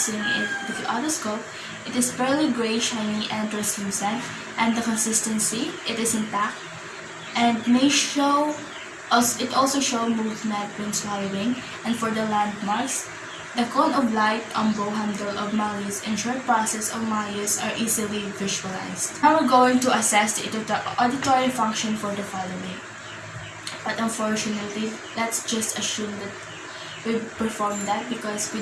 it with the otoscope, it is fairly gray, shiny, and translucent, and the consistency, it is intact, and it also shows movement when swallowing. And for the landmarks, the cone of light, bow handle of malleus, and short process of malleus are easily visualized. Now we're going to assess the auditory function for the following. But unfortunately, let's just assume that we perform that because we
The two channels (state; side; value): identical; both; correlation 1.00